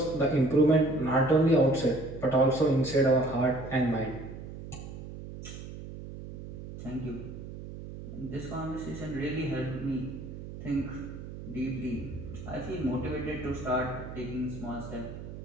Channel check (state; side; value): noise; right; hum, 11 dB below the sound